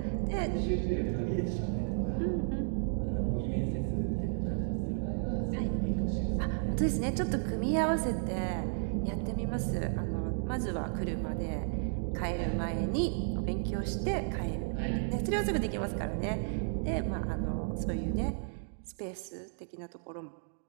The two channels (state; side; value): silent; left; digital silence